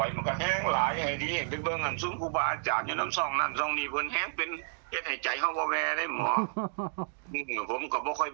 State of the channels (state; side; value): silent; left; digital silence